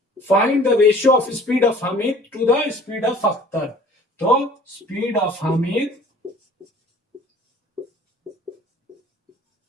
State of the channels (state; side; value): normal; both; correlation 0.50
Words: Find the ratio of speed of Hamid to the speed of Akhtar. तो speed of Hamid